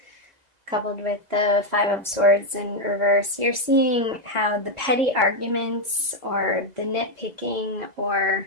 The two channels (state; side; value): late; left; 2.0 ms